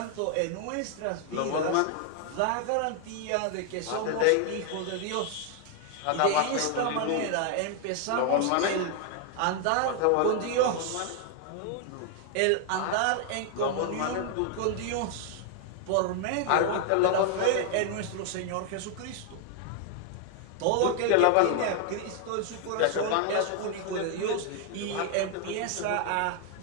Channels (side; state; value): both; different; correlation 0.00